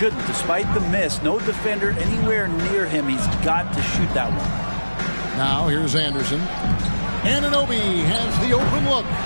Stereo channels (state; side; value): inverted; both; correlation -1.00